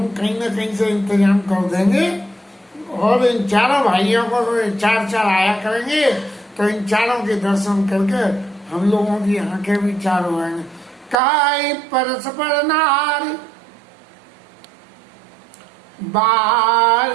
कहीं ना कहीं से इंतजाम कर देंगे। और इन चारों भाइयों को चार चार आया करेंगे, तो इन चारों के दर्शन करके हम लोगों की आंखें भी चार हो जाएंगे। काय परस्पर नारी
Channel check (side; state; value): left; drops out; at 11.2 s